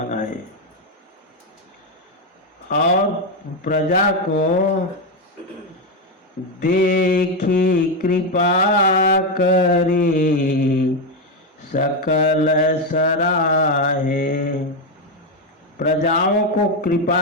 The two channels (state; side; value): normal; both; correlation 0.07